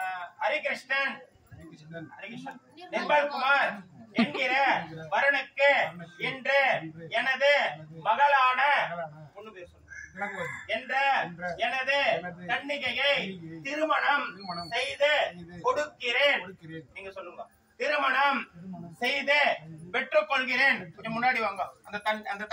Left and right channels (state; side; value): identical; both; correlation 1.00